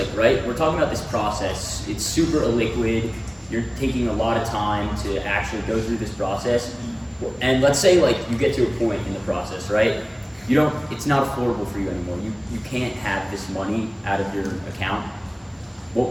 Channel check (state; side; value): identical; both; correlation 1.00